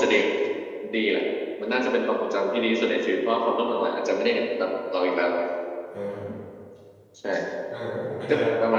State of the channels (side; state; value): both; identical; correlation 1.00